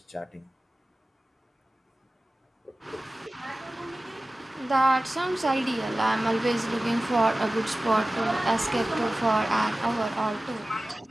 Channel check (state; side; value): normal; both; correlation 0.96